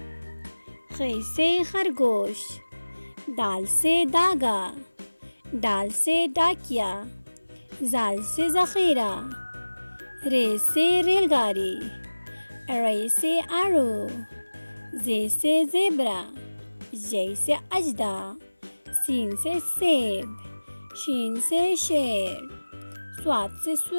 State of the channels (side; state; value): both; inverted; correlation -1.00